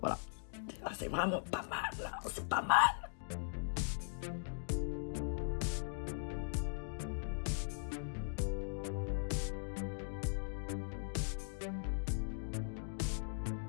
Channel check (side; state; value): right; silent; digital silence